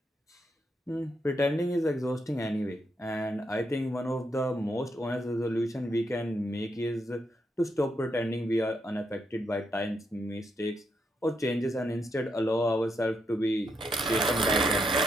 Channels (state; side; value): normal; both; correlation 0.80